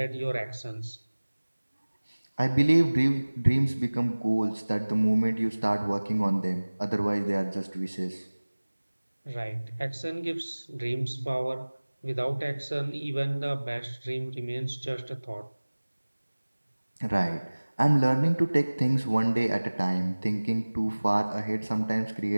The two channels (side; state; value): both; inverted; correlation -1.00